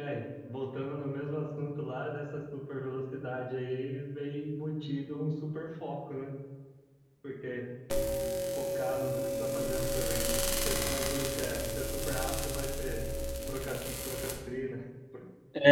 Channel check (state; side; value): identical; both; correlation 1.00